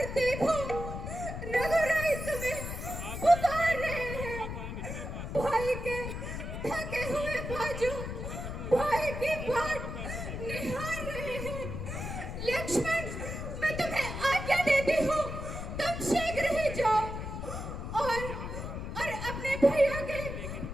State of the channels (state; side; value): noise; left; rumble, 6 dB below the sound